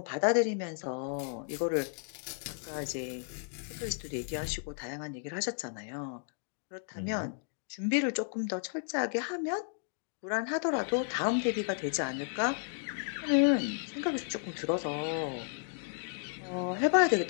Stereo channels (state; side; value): silent; right; digital silence